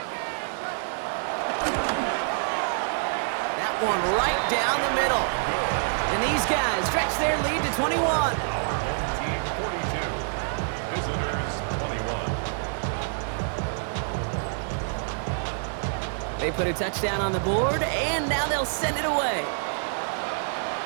That one right down the middle. And these guys stretch their lead to 21. Team 42. Visitors 21. They put a touchdown on the board, and now they'll send it away.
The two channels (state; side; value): silent; left; digital silence